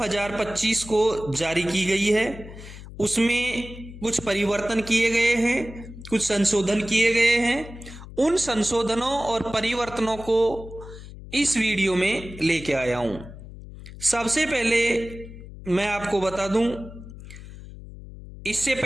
को जारी की गई है। उसमें कुछ परिवर्तन किए गए हैं, कुछ संशोधन किए गए हैं। उन संशोधनों और परिवर्तनों को इस वीडियो में लेके आया हूं। सबसे पहले मैं आपको बता दूं, इससे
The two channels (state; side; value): noise; left; hum, 15 dB below the sound